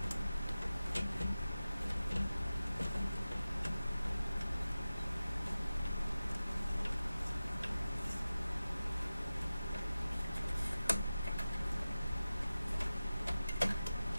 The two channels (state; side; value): inverted; both; correlation -0.95